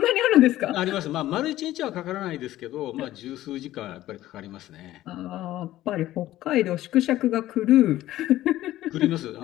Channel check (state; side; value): quieter; right; 14.8 dB